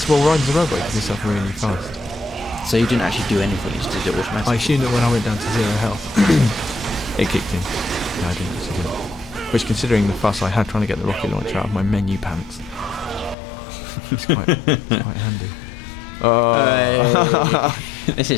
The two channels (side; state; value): right; drops out; at 13.4 s